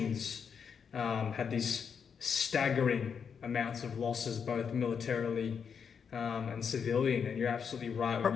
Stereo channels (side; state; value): right; quieter; 6.7 dB